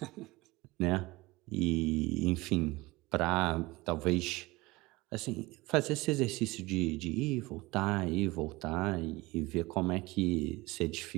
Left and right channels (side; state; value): left; quieter; 21.9 dB